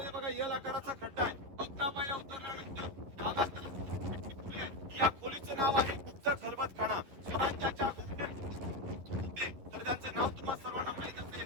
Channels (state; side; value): late; left; 11 ms